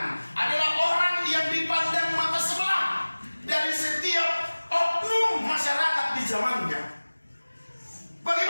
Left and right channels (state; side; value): inverted; both; correlation -1.00